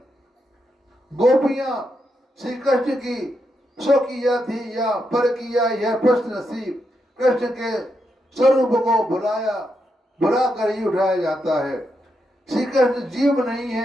गोपियां श्री कृष्ण की स्वकीय थी या परकीय, यह प्रश्न श्री कृष्ण के स्वरूप को भुला कर ही उठाया जाता है। श्री कृष्ण जीव नहीं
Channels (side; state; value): both; normal; correlation 0.83